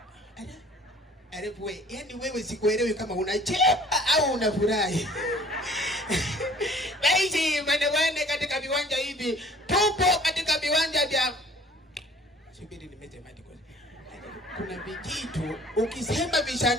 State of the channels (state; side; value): normal; both; correlation 0.52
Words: Wewe, yani wewe sikuelewi kama unacheka au unafurahi. Basi mwanawane katika viwanja hivi, tupo katika viwanja vya subiri nimesemaje kwa. Kuna vijito ukisema